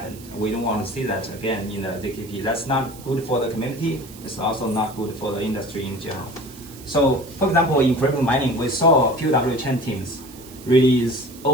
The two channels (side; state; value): right; noise; hiss, 19 dB below the sound